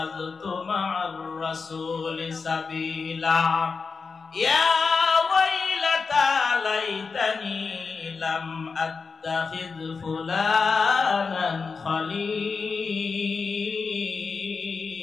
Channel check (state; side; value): quieter; right; 4.9 dB